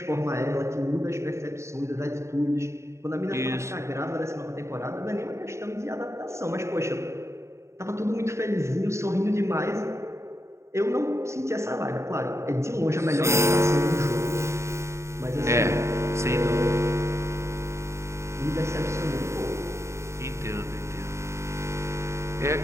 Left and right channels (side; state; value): left; late; 0.14 ms